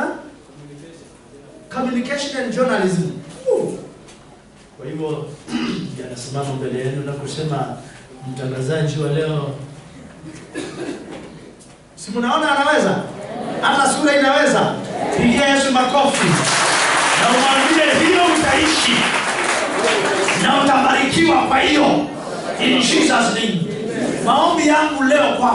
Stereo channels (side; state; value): both; identical; correlation 1.00